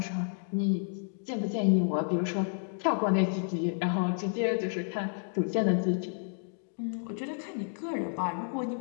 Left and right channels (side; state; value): right; silent; 57 dB below the other